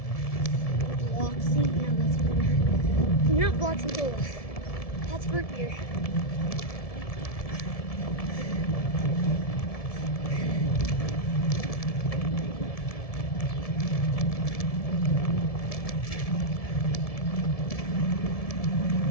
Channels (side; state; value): right; late; 1.7 ms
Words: Bloxy? No, that's good. Not Bloxy Cola. That's root beer.